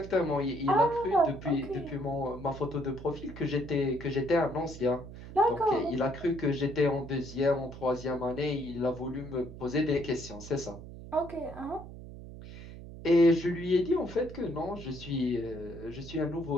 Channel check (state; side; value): noise; right; hum, 13 dB below the sound